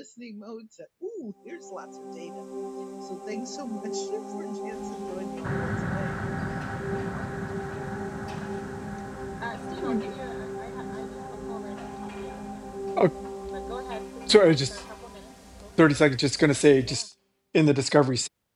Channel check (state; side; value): identical; both; correlation 1.00